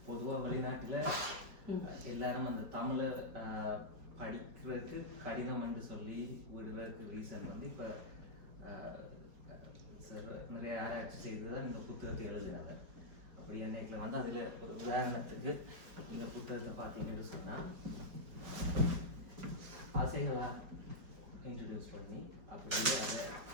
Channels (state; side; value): late; left; 5.0 ms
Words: பொதுவாக வெளிநாட்டில் எல்லாரும் அந்த தமிழை படிக்கிறதுக்கு கடிதம் என்று சொல்லி விடுவதற்கு ரீசன் வந்து இப்போ நிறைய ஆராய்ச்சி செய்து தான் இந்த புத்தகத்தை எழுதுனாங்க. அப்படி என்னைக்கில் வந்து அதில் ஒரு உதாரணத்துக்கு இந்த புத்தகத்தை பார்த்தீங்கன்னு சொன்னால் ஆசைகளாக இன்ட்ரடியூஸ் பண்ணி அப்படியே அதை